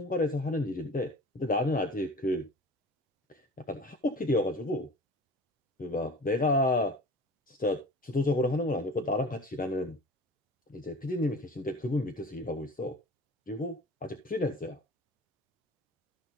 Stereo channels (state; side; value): normal; both; correlation 0.40